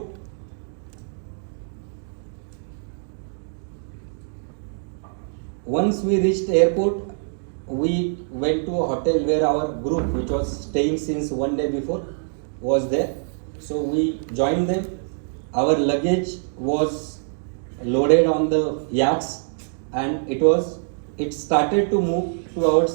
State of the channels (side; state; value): left; silent; digital silence